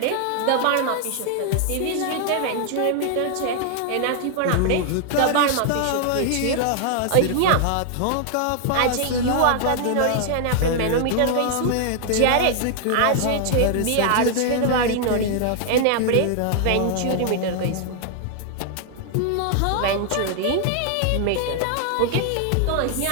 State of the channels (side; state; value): both; different; correlation 0.00